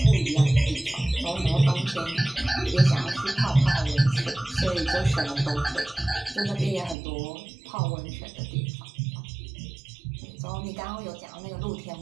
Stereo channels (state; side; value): drops out; left; at 7.0 s